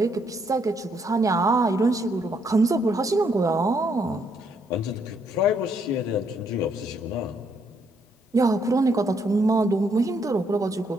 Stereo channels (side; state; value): both; normal; correlation 0.73